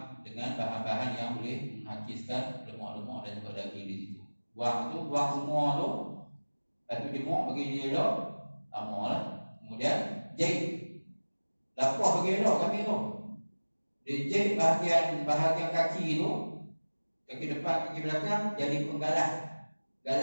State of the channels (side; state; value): both; inverted; correlation -1.00